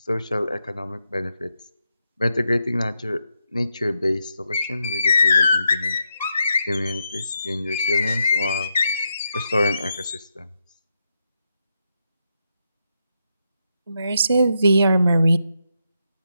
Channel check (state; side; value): inverted; both; correlation -0.83